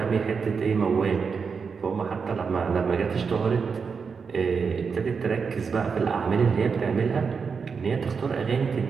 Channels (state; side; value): quieter; left; 5.6 dB